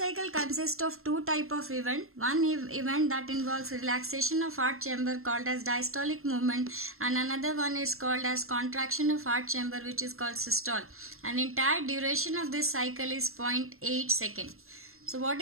consists of two type of event. One event that involves relaxation of heart chamber called as diastolic movement, and another one is called as contraction of heart chamber which is called systole. And entire duration of this cycle is 0.8 second. So what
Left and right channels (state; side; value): late; left; 0.62 ms